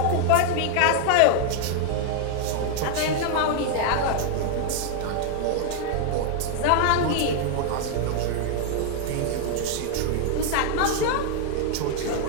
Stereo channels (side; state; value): both; different; correlation 0.00